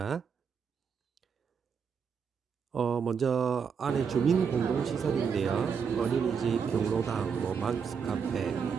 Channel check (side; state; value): left; quieter; 6.4 dB